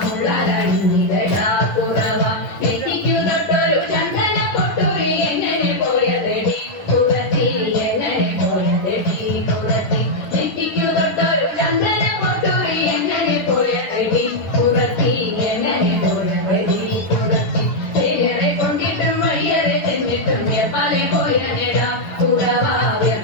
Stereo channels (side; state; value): right; late; 9.9 ms